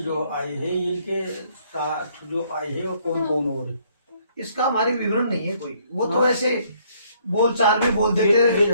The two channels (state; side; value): inverted; both; correlation -0.66